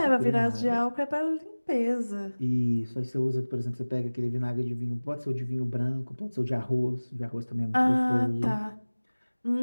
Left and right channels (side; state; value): both; inverted; correlation -1.00